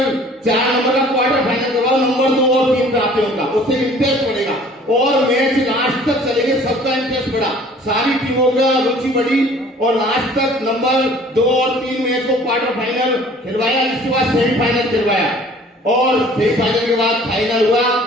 4 नंबर का क्वार्टर फाइनल करवाओ, नंबर 2 और 3 प्राप्त होगा, उससे इंटरेस्ट बढ़ेगा और मैच लास्ट तक चलेंगे, सबका इंटरेस्ट बढ़ा, सारी टीमों का रुचि बढ़ी और लास्ट तक नंबर 2 और 3 मैच को क्वार्टर फाइनल खिलवाया। इसके बाद सेमीफाइनल खिलवाया और सेमीफाइनल के बाद फाइनल हुआ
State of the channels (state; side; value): normal; both; correlation 0.51